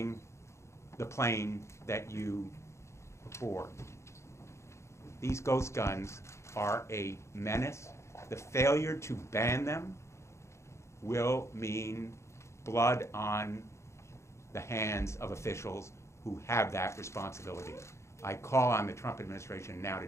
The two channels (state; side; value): late; right; 0.14 ms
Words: the plane that you bore. These ghost guns are a menace. The failure to ban them will mean blood on the hands of officials who have that responsibility. I call on the Trump administration now to